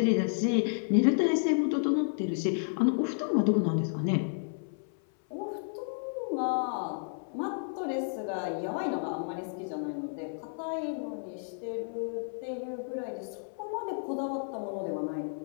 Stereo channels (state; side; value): silent; right; 57 dB below the other